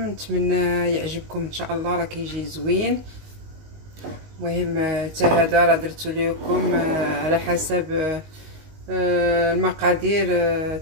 نتمنى يعجبكم ان شاء الله، راه كيجي زوين. المهم حتى هذا راه درتو لكم على حسب المقادير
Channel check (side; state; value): left; late; 19 ms